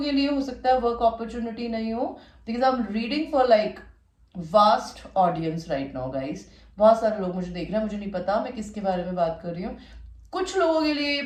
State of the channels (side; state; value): both; identical; correlation 1.00